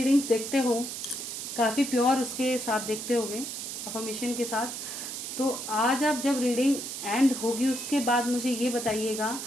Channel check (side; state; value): right; noise; hiss, 6 dB below the sound